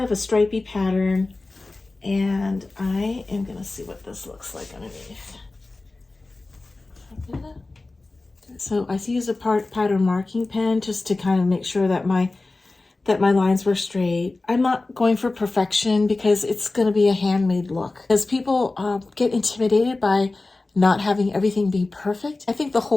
of a stripy pattern, and I am gonna see what this looks like underneath. So I use a pattern marking pen just to kind of make sure that my lines were straight. I'm not going for perfection because it's going to be a handmade look. Because people get intimidated by not having everything be perfect. I think the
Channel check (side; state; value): right; quieter; 3.3 dB